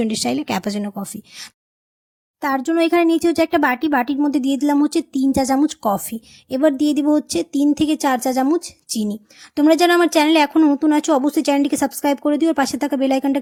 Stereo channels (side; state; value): both; identical; correlation 1.00